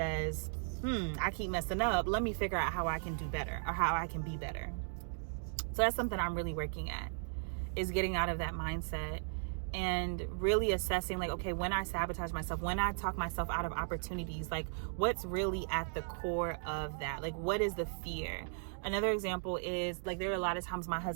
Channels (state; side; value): silent; left; digital silence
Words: I keep messing up. Let me figure out how I can do better, or how I can be better. So that's something I'm really working at, is getting out of that mindset and really assessing like, okay, when I sabotage myself, when I talk myself out of opportunities, like what's really at the core of that? Like, what is the fear? Another example is like, there are a lot of times my